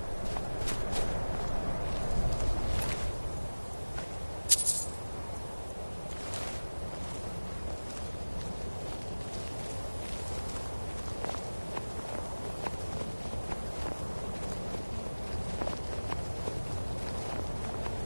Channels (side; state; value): both; inverted; correlation -1.00